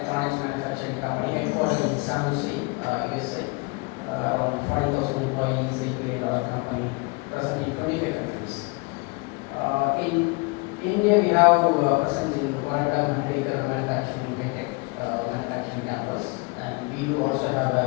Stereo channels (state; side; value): quieter; right; 28.3 dB